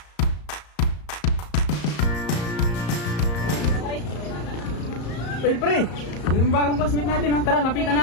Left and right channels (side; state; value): right; late; 34 ms